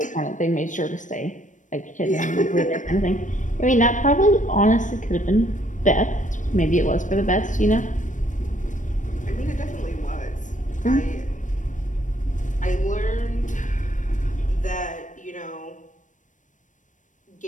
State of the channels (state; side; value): late; right; 0.37 ms